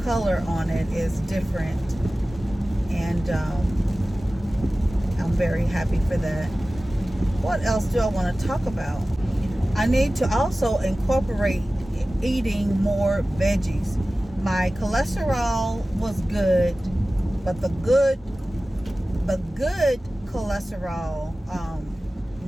color on it is different, and I'm very happy for that. What else do I want to talk about? I need to also incorporate eating more veggies. My cholesterol was good, but the good cholesterol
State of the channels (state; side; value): normal; both; correlation 0.96